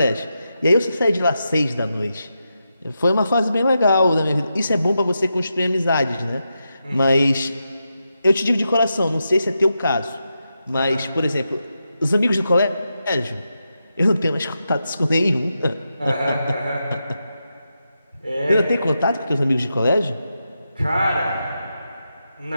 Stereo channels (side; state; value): both; inverted; correlation -0.87